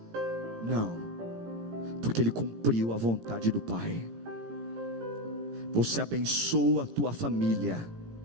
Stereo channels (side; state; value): left; late; 17 ms